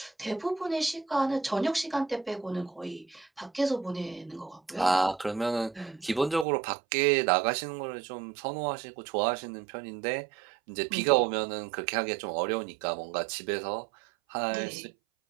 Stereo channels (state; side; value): drops out; left; at 6.5 s